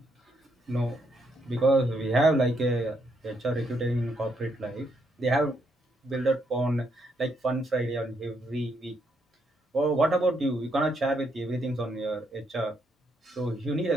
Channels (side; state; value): both; normal; correlation 0.76